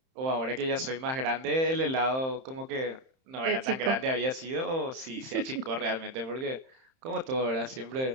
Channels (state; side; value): late; left; 31 ms